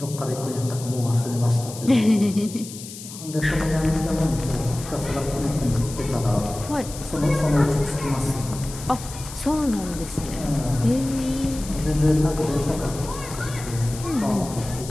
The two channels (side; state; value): left; noise; hiss, 13 dB below the sound